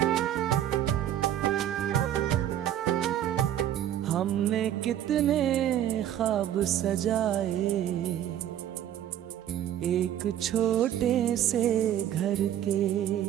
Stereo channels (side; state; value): left; quieter; 11.2 dB